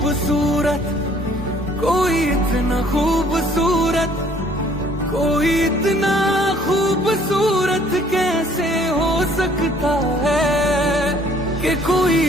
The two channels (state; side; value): normal; both; correlation 0.59